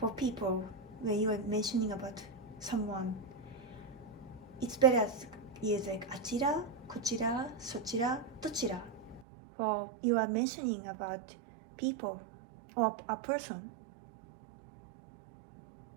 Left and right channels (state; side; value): drops out; left; at 9.2 s